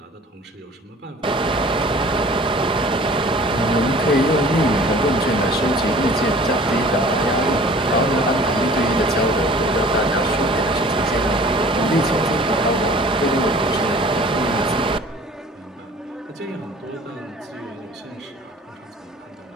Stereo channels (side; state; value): both; normal; correlation 0.47